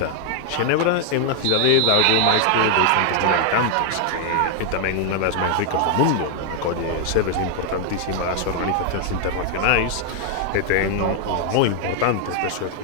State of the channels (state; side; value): different; both; correlation 0.00